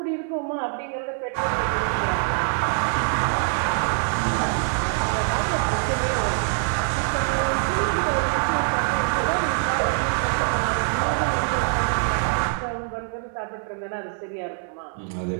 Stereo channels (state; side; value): silent; left; 58 dB below the other